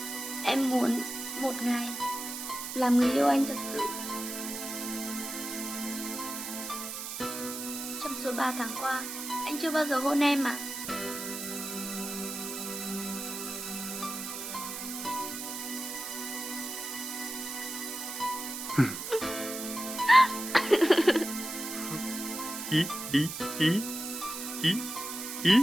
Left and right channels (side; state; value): right; noise; hiss, 6 dB below the sound